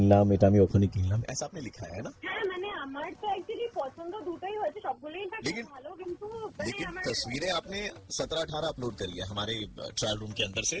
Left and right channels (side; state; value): both; identical; correlation 1.00